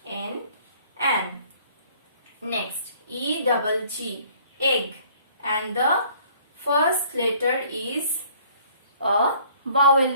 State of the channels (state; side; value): inverted; both; correlation -0.57